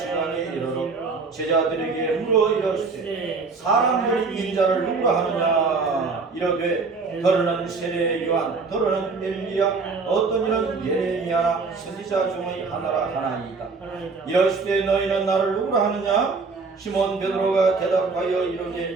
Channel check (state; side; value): quieter; left; 4.4 dB